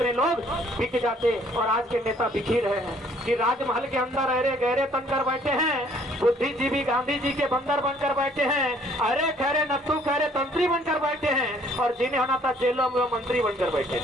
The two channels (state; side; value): normal; both; correlation 0.60